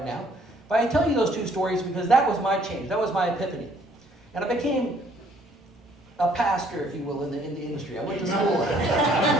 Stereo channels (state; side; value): normal; both; correlation 0.62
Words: now. But I tell you those two stories because that was my change. That was my epiphany. And I became a pastor, if you will, in the industry. I went to school.